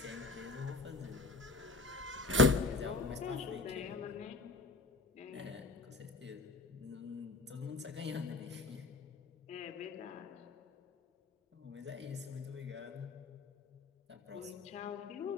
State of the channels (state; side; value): quieter; right; 3.6 dB